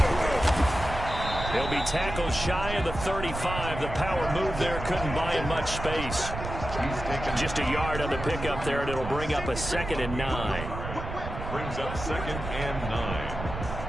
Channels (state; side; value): noise; right; rumble, 7 dB below the sound